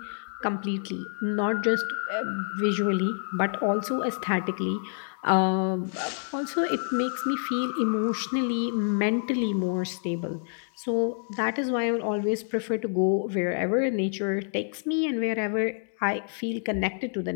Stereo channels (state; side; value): silent; right; digital silence